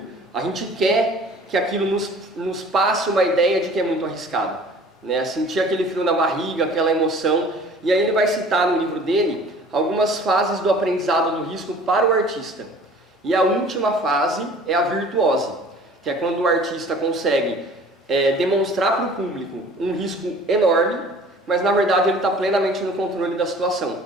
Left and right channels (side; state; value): both; normal; correlation 0.48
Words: a gente quer que aquilo nos passe uma ideia de que é muito arriscado, né? Sentir aquele frio na barriga, aquela emoção. E aí ele vai citar no livro dele algumas fases do aprendizado do risco para o artista. E a última fase é a virtuose, que é quando o artista consegue demonstrar para o público um risco enorme, mas na verdade ele está plenamente no controle da